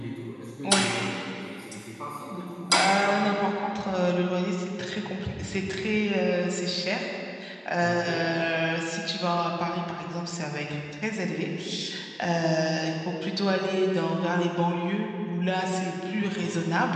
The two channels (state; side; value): identical; both; correlation 1.00